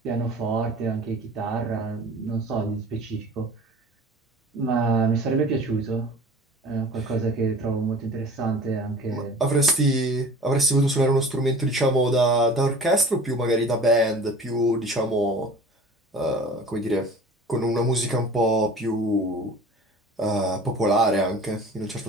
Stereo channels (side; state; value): both; normal; correlation 0.43